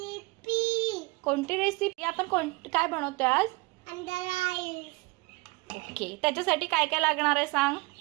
कोणती रेसिपी आपण काय बनवतोय आज? अंडा राईस. ओके, त्याच्यासाठी काय काय लागणार आहे सांग.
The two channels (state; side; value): quieter; left; 25.9 dB